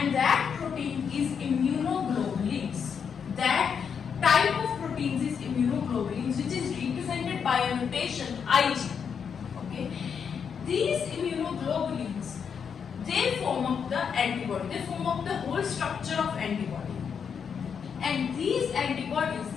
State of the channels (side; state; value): right; quieter; 6.9 dB